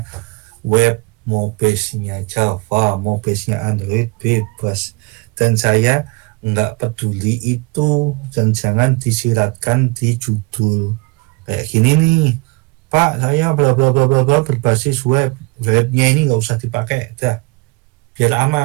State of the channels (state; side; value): quieter; left; 26.3 dB